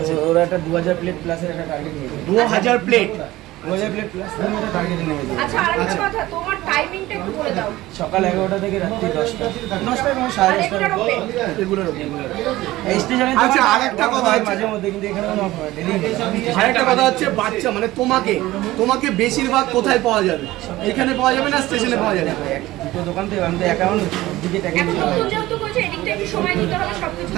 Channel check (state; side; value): quieter; left; 17.3 dB